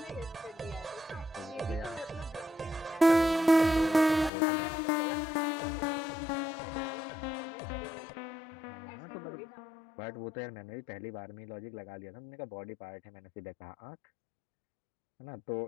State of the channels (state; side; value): drops out; right; at 4.3 s